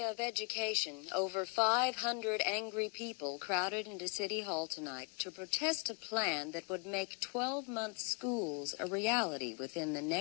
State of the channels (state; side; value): quieter; right; 34.5 dB